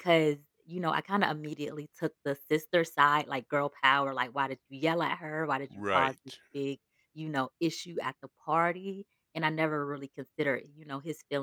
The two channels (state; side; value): identical; both; correlation 1.00